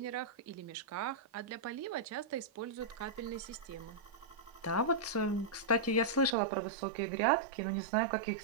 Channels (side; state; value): left; drops out; at 6.4 s